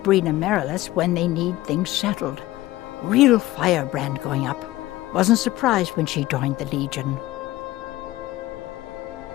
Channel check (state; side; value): quieter; right; 17.0 dB